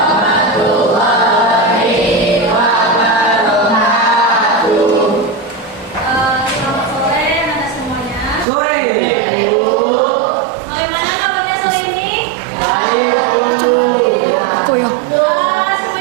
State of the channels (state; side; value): drops out; left; at 8.5 s